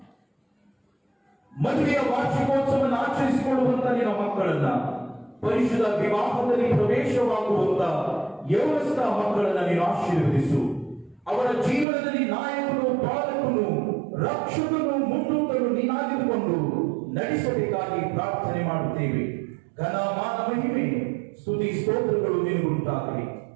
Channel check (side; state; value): left; drops out; at 11.9 s